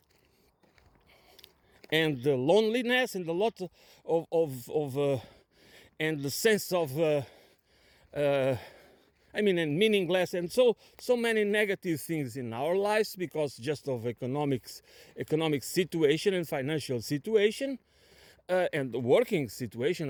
and the loneliness and a lot of and the sense of and meaningless, and so many negative things in our lives because just of economic situation and financial situation, and the working situation,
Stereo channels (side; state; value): both; identical; correlation 1.00